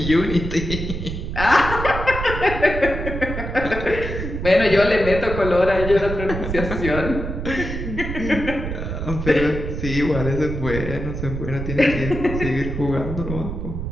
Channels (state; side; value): noise; right; rumble, 5 dB below the sound